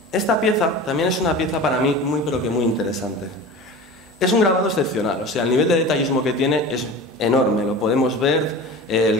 esta pieza también es una pieza para mí muy pero que muy interesante. Es un grabado excepcional, o sea, el nivel de detallismo que tiene es enorme, lo podemos ver,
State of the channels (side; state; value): both; normal; correlation 0.35